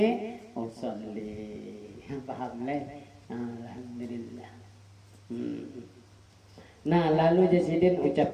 usolli. Paham leh? Alhamdulillah. Nah, lalu jasidin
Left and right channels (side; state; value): both; identical; correlation 1.00